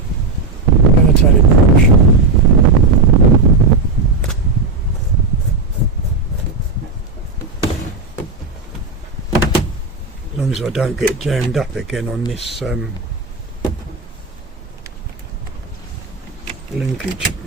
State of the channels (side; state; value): left; quieter; 3.7 dB